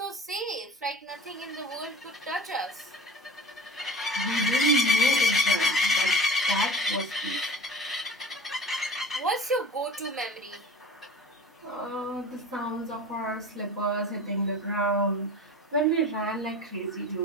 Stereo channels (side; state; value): both; normal; correlation 0.38